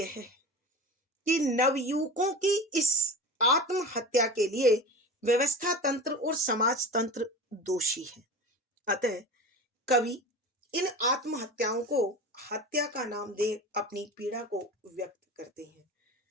है कि नवयुवकों की इस आत्महत्या के लिए व्यवस्था तंत्र और समाज तंत्र दोषी है। अतः कवि इन आत्महत्याओं को हत्या का नाम दे अपनी पीड़ा को व्यक्त करते हैं।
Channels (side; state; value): both; normal; correlation 0.32